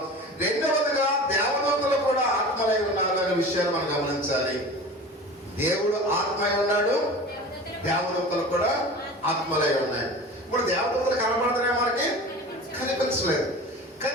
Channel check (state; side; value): normal; both; correlation 0.36